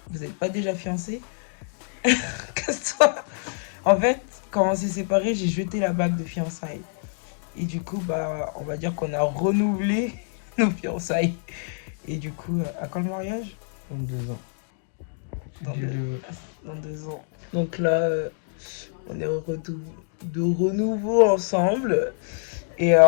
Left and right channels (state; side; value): silent; right; digital silence